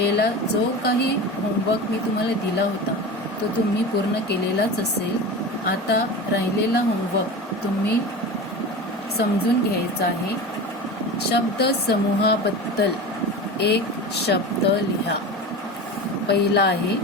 जो काही होमवर्क मी तुम्हाला दिला होता तो तुम्ही पूर्ण केलेलाच असेल. आता राहिलेला होमवर्क तुम्ही समजून घ्यायचा आहे. शब्द समूहाबद्दल एक शब्द लिहा. पहिला आहे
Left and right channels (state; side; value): normal; both; correlation 0.30